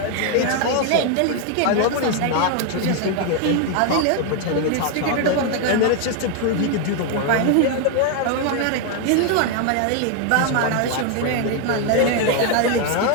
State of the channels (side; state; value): both; different; correlation 0.01